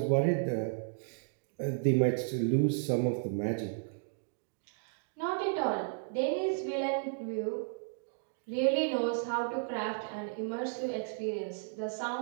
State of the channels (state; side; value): silent; left; digital silence